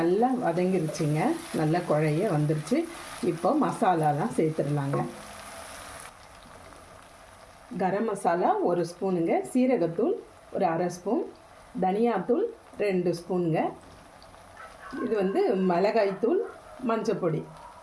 வதங்கிருச்சுங்க, நல்லா குழைய வந்துருச்சு. இப்போ மசாலாலாம் சேர்த்துடலாங்க. கரம் மசாலா 1 ஸ்பூனுங்க, சீரகத்தூள் ஒரு அரை ஸ்பூன், தனியாத்தூள் 2 ஸ்பூனுங்க, இது மிளகாய்த்தூள், மஞ்சப்பொடி,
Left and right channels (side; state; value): both; identical; correlation 1.00